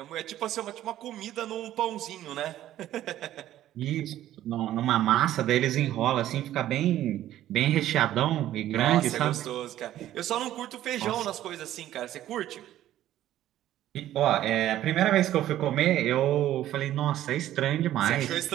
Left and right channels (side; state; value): left; quieter; 13.0 dB